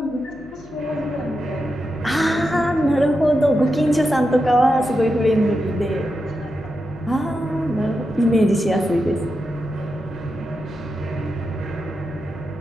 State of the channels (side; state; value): left; noise; hum, 24 dB below the sound